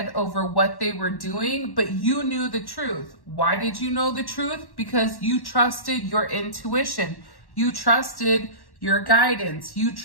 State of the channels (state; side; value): late; right; 1.1 ms